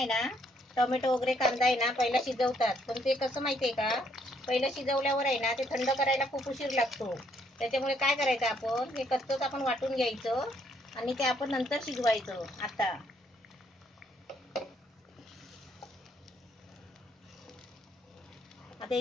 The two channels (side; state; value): both; normal; correlation 0.70